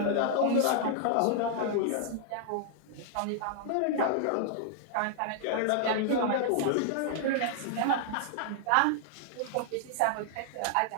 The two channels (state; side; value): different; both; correlation -0.01